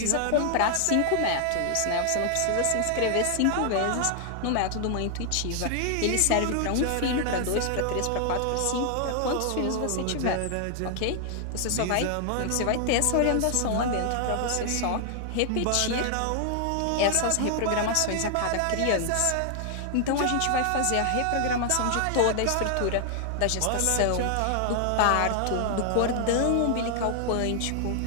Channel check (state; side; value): different; both; correlation 0.00